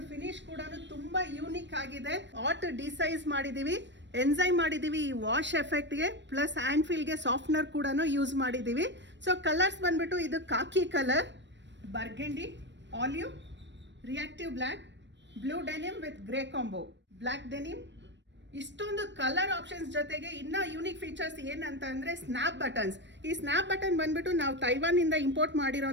ಫಿನಿಶ್ ಕೂಡ ತುಂಬಾ ಯೂನಿಕ್ ಆಗಿದೆ. ಆಟ್ ಡಿಸೈಸ್ ಮಾಡಿದೀವಿ, ಎನ್ಸೈಮ್ ಮಾಡಿದೀವಿ ಈ ವಾಶ್ ಎಫೆಕ್ಟ್ಗೆ, ಪ್ಲಸ್ ಹ್ಯಾಂಡ್ ಫೀಲ್ಗೆ ಸಾಫ್ಟ್ನರ್ ಕೂಡ ಯೂಸ್ ಮಾಡಿದೀವಿ. ಸೊ ಕಲರ್ಸ್ ಬಂದ್ಬಿಟ್ಟು ಇದು khaki colour, burgundy, olive, reactive black, blue denim with grey combo, black denim. ಇಷ್ಟೊಂದು ಕಲರ್ ಆಪ್ಷನ್ಸ್ ಜೊತೆಗೆ ಇನ್ನ ಯೂನಿಕ್ ಫೀಚರ್ಸ್ ಏನಂತ ಅಂದ್ರೆ ಸ್ನ್ಯಾಪ್ ಬಟನ್ಸ್. ಈ ಸ್ನ್ಯಾಪ್ ಬಟನ್ ಬಂದ್ಬಿಟ್ಟು ನಾವು ತೈವಾನ್ ಇಂದ ಇಂಪೋರ್ಟ್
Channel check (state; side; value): late; left; 0.53 ms